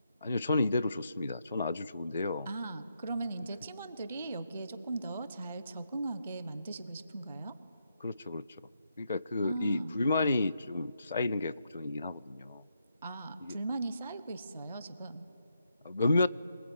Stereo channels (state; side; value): inverted; both; correlation -0.81